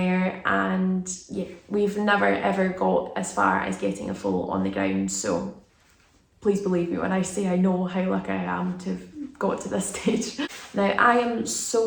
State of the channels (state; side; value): identical; both; correlation 1.00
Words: and yeah, we've never ever got as far as getting a foal on the ground. So please believe me when I say I know how lucky I am to have got to this stage. Now, I am